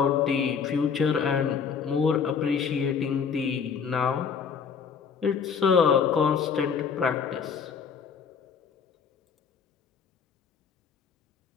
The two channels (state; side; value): quieter; right; 6.4 dB